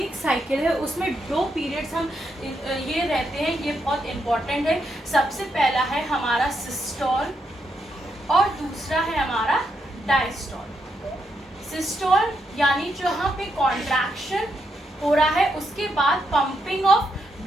साइकिल है उसमें 2 पीरियड्स हम ये रहते हैं, ये बहुत इंपॉर्टेंट है। सबसे पहला है हमारा सिस्टॉल और दूसरा है हमारा डायस्टॉल। सिस्टॉल यानी जहाँ पे कॉन्ट्रैक्शन हो रहा है उसके बाद पंपिंग ऑफ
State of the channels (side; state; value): both; normal; correlation 0.80